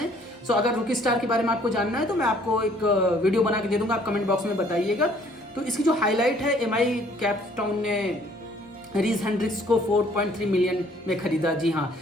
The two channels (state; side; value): normal; both; correlation 0.60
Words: सो अगर रुकी स्टार के बारे में आपको जानना है तो मैं आपको एक वीडियो बना के दे दूंगा, आप कमेंट बॉक्स में बताइएगा. तो इसकी जो हाईलाइट है, MI कैप टाउन ने रीज हेंड्रिक्स को 4.3 मिलियन में खरीदा. जी हाँ,